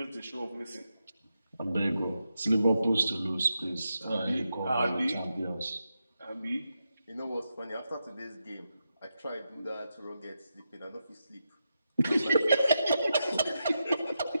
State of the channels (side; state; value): both; inverted; correlation -0.87